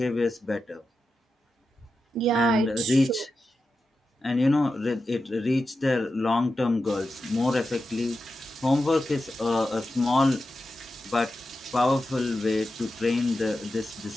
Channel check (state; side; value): normal; both; correlation 0.90